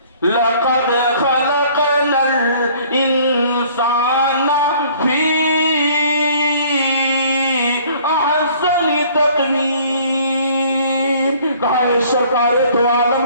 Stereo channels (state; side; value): inverted; both; correlation -0.55